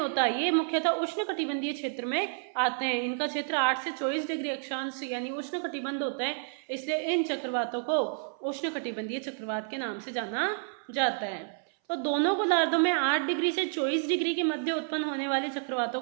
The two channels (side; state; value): left; silent; 58 dB below the other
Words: ये मुख्यतः उष्णकटिबंधीय क्षेत्र में आते हैं। इनका क्षेत्र 8 से 24 डिग्री अक्षांश यानी उष्णकटिबंध होता है, इसलिए इन चक्रवातों को उष्णकटिबंधीय चक्रवात के नाम से जाना जाता है। तो दोनों गोलार्धों में 8 डिग्री से 24 डिग्री के मध्य उत्पन्न होने वाले चक्रवातों